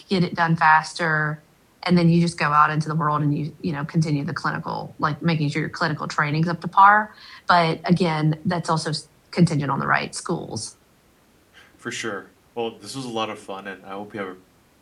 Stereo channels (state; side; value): identical; both; correlation 1.00